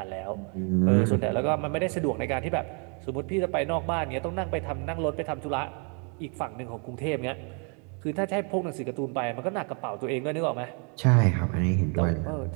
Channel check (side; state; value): left; quieter; 37.8 dB